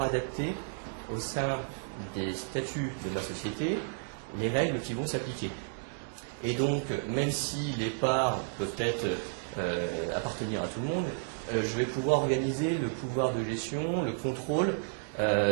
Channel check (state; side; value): silent; left; digital silence